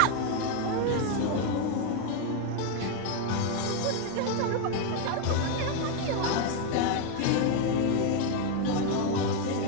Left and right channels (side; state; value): both; different; correlation 0.01